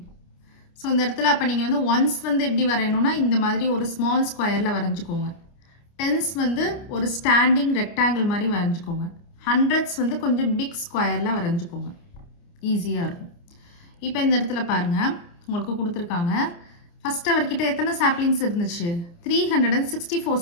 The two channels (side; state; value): right; late; 29 ms